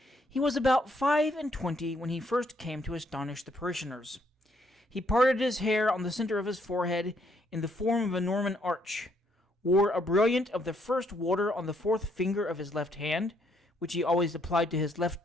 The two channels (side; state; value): both; normal; correlation 0.71